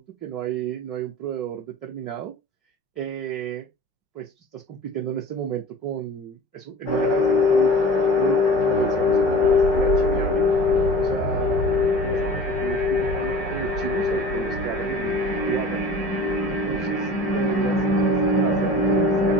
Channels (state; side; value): late; right; 5.5 ms